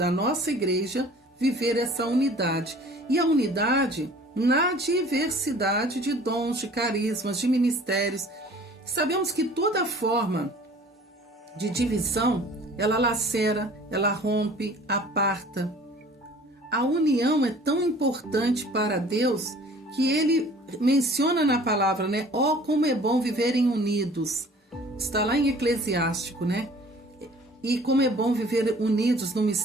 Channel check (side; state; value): both; normal; correlation 0.49